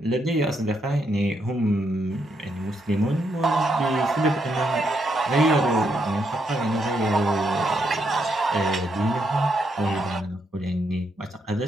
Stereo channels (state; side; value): normal; both; correlation 0.78